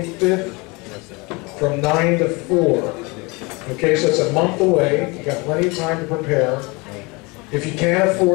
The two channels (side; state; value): right; quieter; 26.6 dB